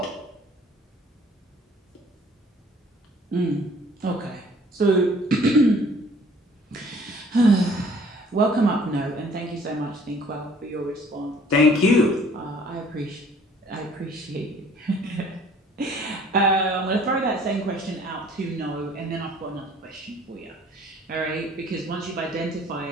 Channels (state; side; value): normal; both; correlation 0.55